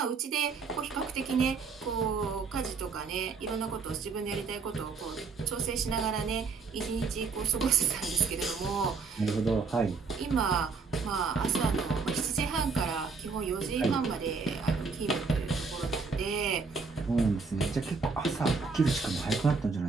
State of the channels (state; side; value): quieter; left; 4.9 dB